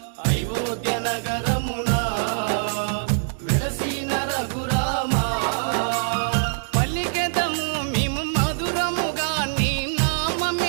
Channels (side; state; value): left; silent; digital silence